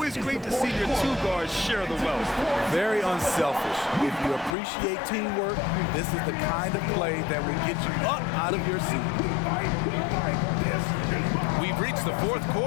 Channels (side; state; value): right; drops out; at 4.5 s